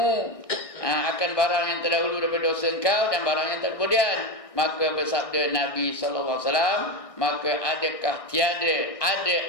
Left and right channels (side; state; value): right; late; 1.6 ms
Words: akan barang yang terdahulu daripada dosa engkau dan barang yang kemudian. Maka bersabda Nabi SAW, maka adakah tiada ada